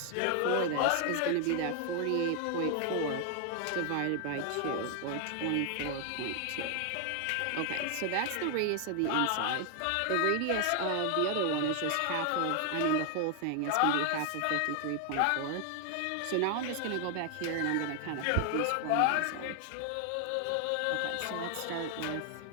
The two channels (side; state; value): both; different; correlation 0.00